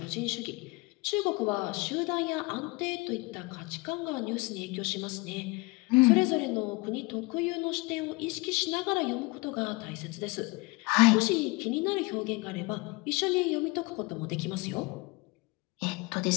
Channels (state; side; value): quieter; right; 25.2 dB